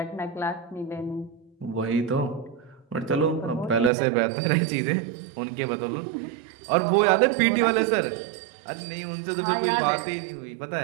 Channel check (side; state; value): left; drops out; at 3.9 s